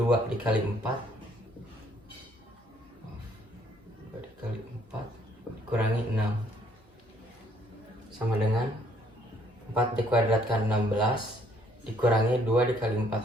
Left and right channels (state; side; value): normal; both; correlation 0.65